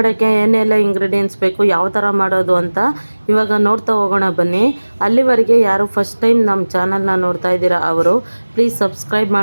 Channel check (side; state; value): both; inverted; correlation -1.00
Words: ಏನೆಲ್ಲ ಇಂಗ್ರೀಡಿಯೆಂಟ್ಸ್ ಬೇಕು, ಯಾವ ಥರ ಮಾಡೋದು ಅಂತ ಇವಾಗ ನೋಡ್ತಾ ಹೋಗೋಣ ಬನ್ನಿ. ಅಲ್ಲಿವರೆಗೆ ಯಾರು ಫಸ್ಟ್ ಟೈಮ್ ನಮ್ಮ ಚಾನಲ್ನ ನೋಡ್ತಾ ಇದ್ದೀರಾ ಅವರು ಪ್ಲೀಸ್ ಸಬ್ಸ್ಕ್ರೈಬ್